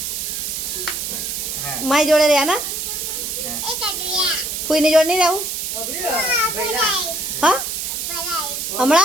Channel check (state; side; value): noise; right; hiss, 3 dB below the sound